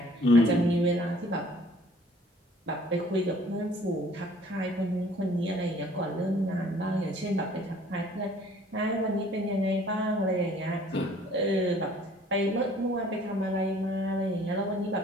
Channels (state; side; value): normal; both; correlation 0.55